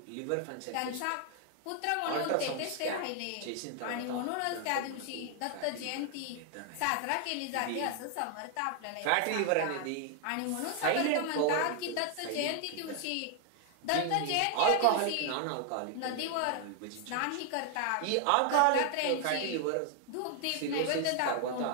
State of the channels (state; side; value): different; both; correlation 0.00